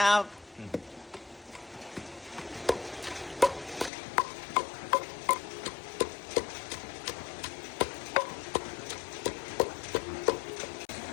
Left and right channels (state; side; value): drops out; right; at 3.9 s